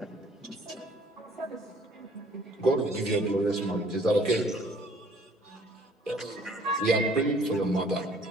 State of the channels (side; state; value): both; normal; correlation 0.57